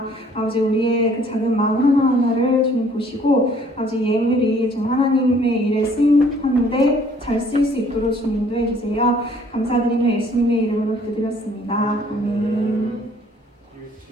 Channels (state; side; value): normal; both; correlation 0.58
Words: 아버지 우리의 그 작은 마음 하나하나를 주님 보시고 아버지 예물이 좀 하나님의 일에 쓰임하는데 잘 쓰일 수 있도록 주님도 해주세요. 감사드리며 예수님의 이름으로 기도드렸습니다. 아멘.